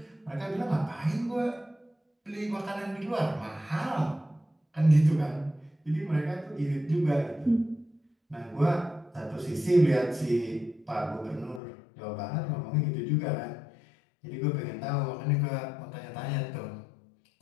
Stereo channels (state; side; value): drops out; right; at 11.6 s